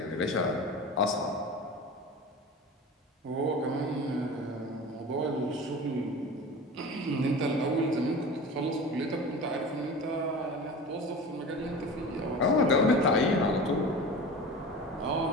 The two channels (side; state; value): both; normal; correlation 0.34